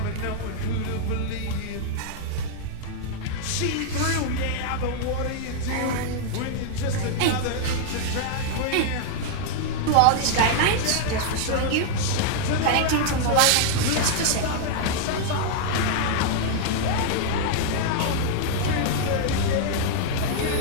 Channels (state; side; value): different; both; correlation -0.01